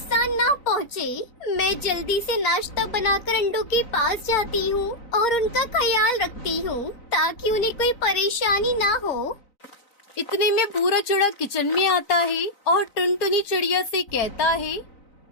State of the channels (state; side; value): late; right; 4.3 ms